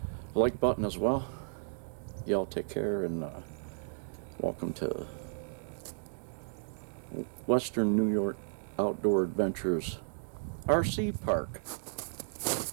like button as well. Y'all take care, and welcome to Western New York Outdoor Adventures RC Park.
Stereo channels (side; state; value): left; silent; digital silence